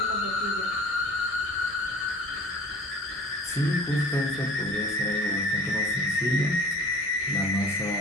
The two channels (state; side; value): normal; both; correlation 0.45